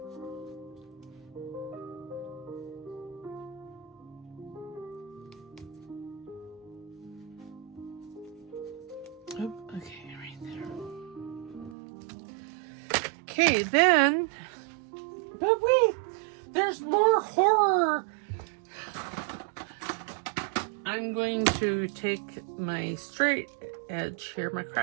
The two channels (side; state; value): left; drops out; at 11.8 s